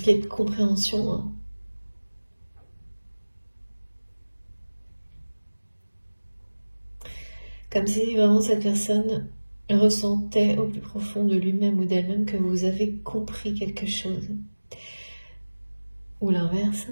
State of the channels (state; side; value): inverted; both; correlation -1.00